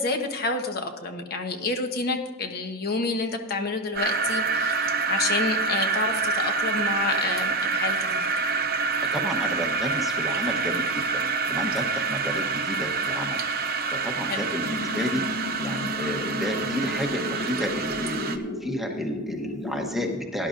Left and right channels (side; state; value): both; normal; correlation 0.19